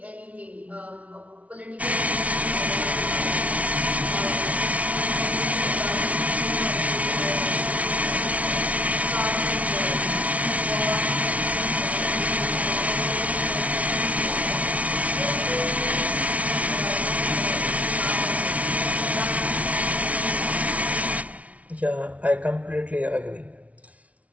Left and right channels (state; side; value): late; left; 0.067 ms